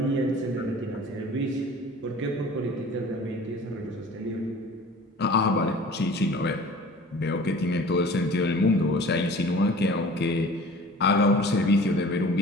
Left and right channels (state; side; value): normal; both; correlation 0.44